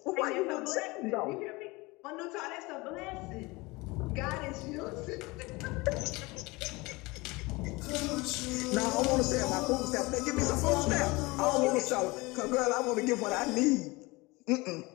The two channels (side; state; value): right; quieter; 23.5 dB